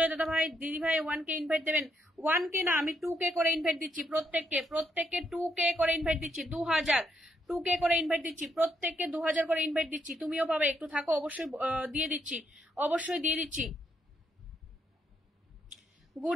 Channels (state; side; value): normal; both; correlation 0.76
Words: দাদা ভাই, দিদি ভাই 1K ইনভাইট দেবেন। 1K না, আমি 2K করে ইনভাইট দিচ্ছি প্রত্যেককে 2K করে ইনভাইট দিচ্ছি। 2K করে ইনভাইট দিচ্ছি, প্রত্যেককে 2000 করে ইনভাইট দিচ্ছি। তুমিও পাবে, একটু থাকো, অবশ্যই দিয়ে দিচ্ছি, অবশ্যই দিয়ে দিচ্ছি।